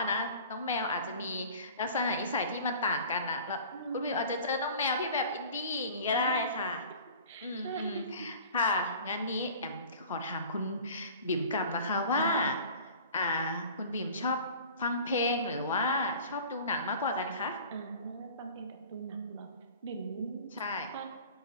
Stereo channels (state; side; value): inverted; both; correlation -0.43